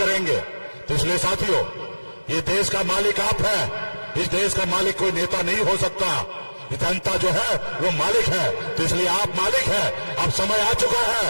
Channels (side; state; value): both; inverted; correlation -1.00